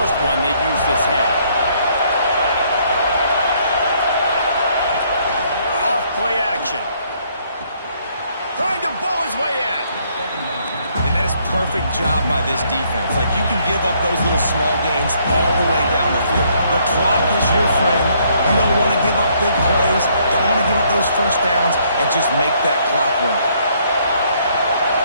one they've used this half. Off play action. Trying to bowl his way in. And that is perfect job by this defense. Like, you can give up those little small gains all the way down the field. The clock is your friend. You don't want to give up big plays. Don't want to give up those 1st downs, and just make that clock run.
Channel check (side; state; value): both; inverted; correlation -0.68